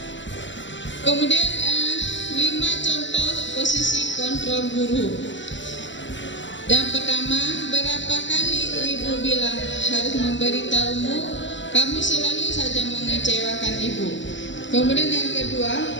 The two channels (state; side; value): late; right; 0.54 ms